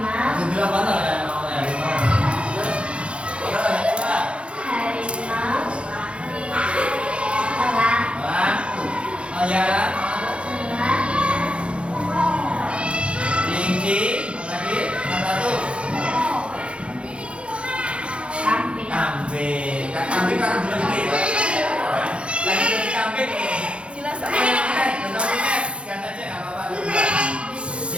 Sebelah mana ya mau harimau? Berapa yang kedua? Harimau. Elang. Elang. Oh ya kan? Elang. Kelinci. Lagi yang satu. Kambing. Kambing. Kambing kan belum gede. Lagi jadi kambing. Jelas Ikan aja nggak apa-apa.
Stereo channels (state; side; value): late; left; 0.059 ms